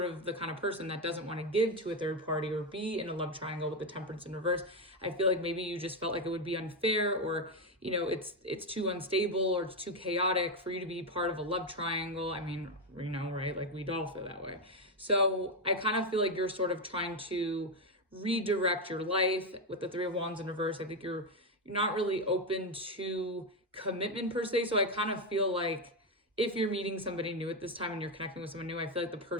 of the kind of person that doesn't want to give to a third party or be in a love triangle with the Temperance in reverse. I feel like maybe you just felt like it would be unfair, or, it's too unstable or it's too chaotic for you to be part of a love triangle. I mean, right? Like, we'd all feel that way. So I kind of feel like you're sort of trying to redirect your life with the Three of Wands in reverse. I think you're not really open to commitment per se. So I kind of feel like if you're meeting somebody new at this time and you're connecting with someone new, I feel like the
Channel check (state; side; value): normal; both; correlation 0.08